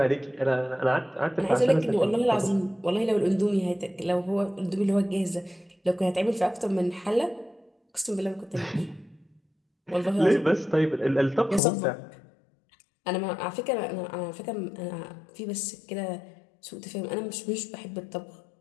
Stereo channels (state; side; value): drops out; right; at 11.6 s